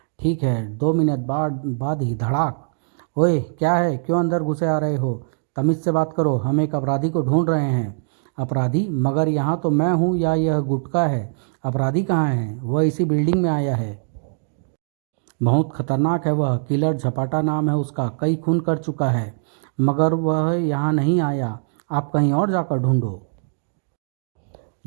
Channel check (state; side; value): silent; left; digital silence